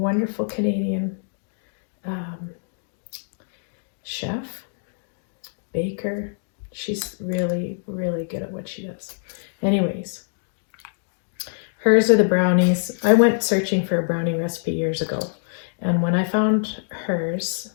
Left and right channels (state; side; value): silent; right; digital silence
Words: Canadian chef, baker. She's really, really good at what she does. Anyways, hers are the brownies. I went searching for a brownie recipe years ago, and when I found hers,